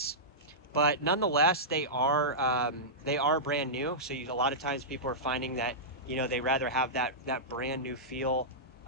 But nonetheless, they are brand new. So a lot of times people are finding that, you know, they rather have that brand new feel,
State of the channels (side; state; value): both; normal; correlation -0.14